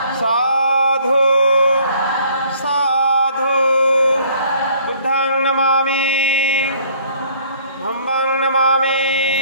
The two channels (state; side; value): inverted; both; correlation -0.58